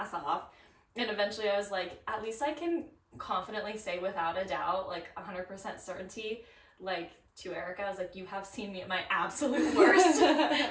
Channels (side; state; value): both; identical; correlation 1.00